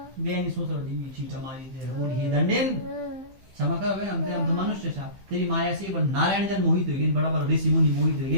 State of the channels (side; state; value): left; late; 15 ms